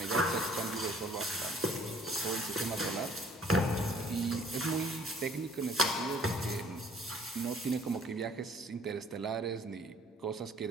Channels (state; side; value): normal; both; correlation 0.57